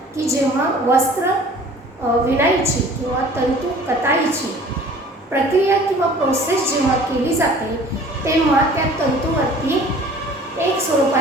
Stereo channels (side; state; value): both; normal; correlation 0.49